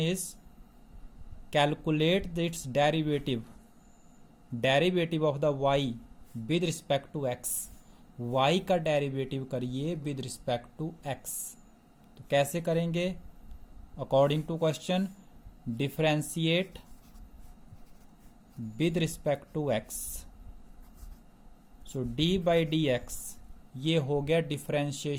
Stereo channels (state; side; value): identical; both; correlation 1.00